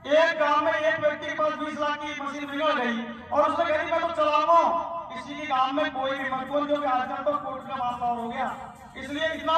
एक गांव में एक व्यक्ति के पास 20 लाख की मशीन बिगड़ गई और उसने कह दी मैं तो चलाऊंगा, किसी के गांव में कोई भी मत बोल, जो कि आजकल तो कोर्ट का मामला हो गया। इसलिए इतना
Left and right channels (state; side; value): identical; both; correlation 1.00